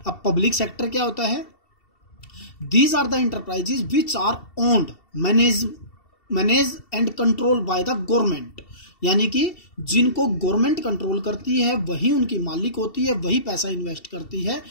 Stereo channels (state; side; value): late; right; 2.7 ms